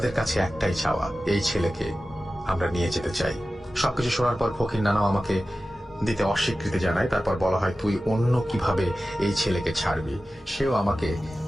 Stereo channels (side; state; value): both; normal; correlation 0.95